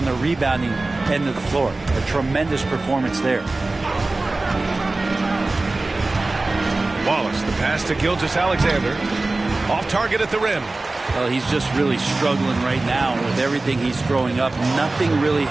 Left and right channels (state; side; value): quieter; left; 3.2 dB